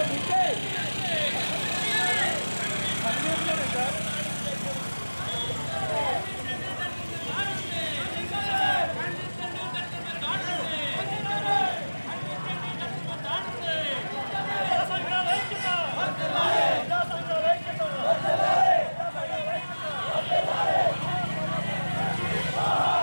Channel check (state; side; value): inverted; both; correlation -1.00